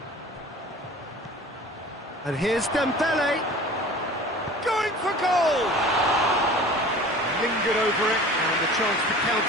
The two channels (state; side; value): normal; both; correlation 0.42